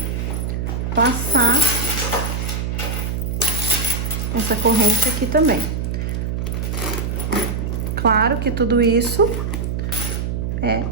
passar essa corrente aqui também. Claro que tudo isso é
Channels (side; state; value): right; noise; hum, 2 dB below the sound